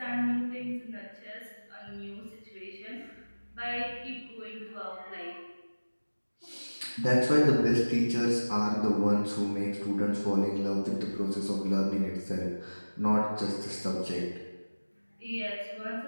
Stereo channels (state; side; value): inverted; both; correlation -1.00